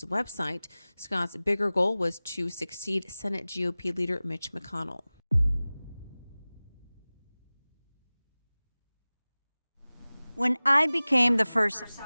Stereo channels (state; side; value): inverted; both; correlation -0.98